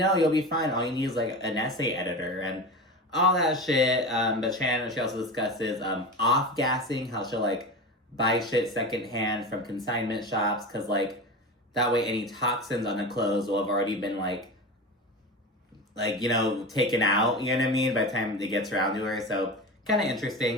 you'll be fine. All you need is, like, an essay editor and all that shit. But Shannon, she also discusses off-gassing, how she'll, like, buy shit secondhand from consignment shops, because, like, that way any toxins on the clothes will have already been, like, you know, taken out, you know what I mean, by the time it gets around to her. So kind of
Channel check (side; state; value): both; normal; correlation 0.27